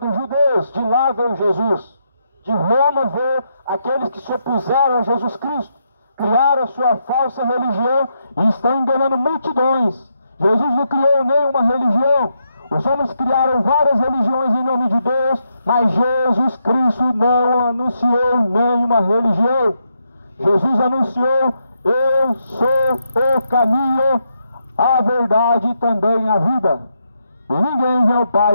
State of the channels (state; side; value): inverted; both; correlation -0.81